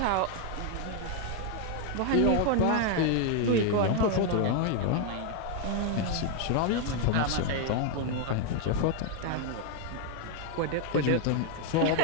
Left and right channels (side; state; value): both; different; correlation 0.00